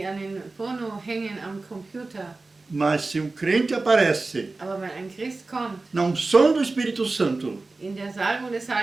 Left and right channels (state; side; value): quieter; left; 3.5 dB